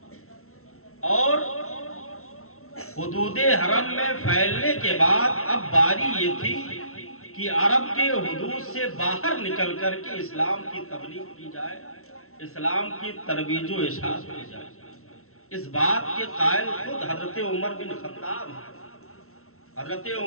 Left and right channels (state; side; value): late; right; 0.63 ms